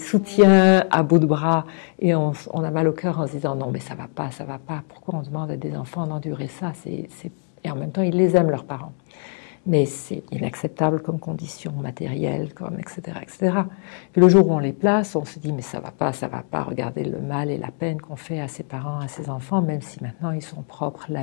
à bout de bras et on a mal au cœur en se disant non mais ça va pas. Pourquoi on demande à des enfants d'endurer ça? Et en même temps, ils les aiment, leurs parents. Mais c'est inacceptable comme condition matérielle, etc., etc. Puis le jour où on les place, on se dit mais ça va pas, regardez le mal et la peine qu'on fait à ses parents, à ses enfants, même si maintenant ils sont propres,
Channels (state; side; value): silent; right; 57 dB below the other